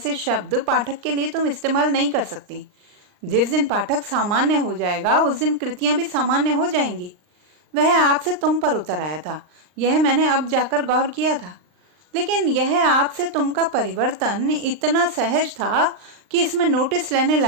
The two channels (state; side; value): late; left; 39 ms